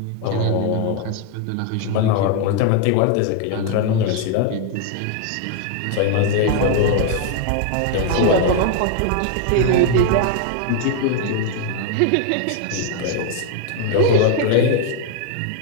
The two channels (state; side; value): different; both; correlation 0.00